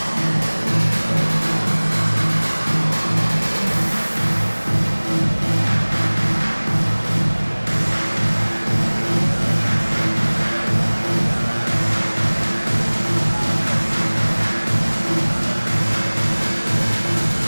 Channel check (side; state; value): both; inverted; correlation -1.00